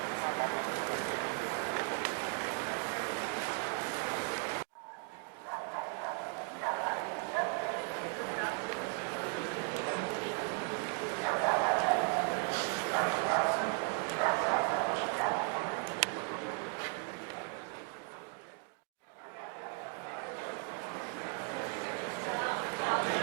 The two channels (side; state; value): left; quieter; 37.5 dB